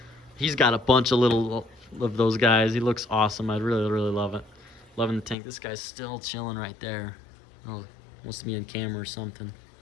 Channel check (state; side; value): drops out; right; at 5.4 s